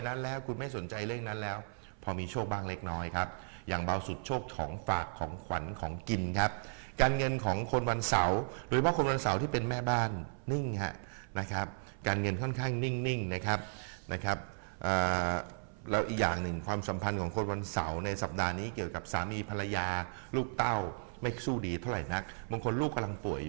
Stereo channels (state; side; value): silent; left; 54 dB below the other